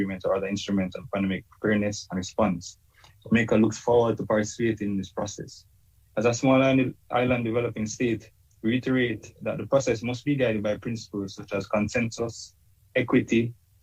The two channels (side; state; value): both; identical; correlation 1.00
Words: or other instruments on pandemic preparedness and response. Jamaica looks forward to participating in this process. As a small island developing state, reiterate that the process must be guided by principles such as consensus, equity,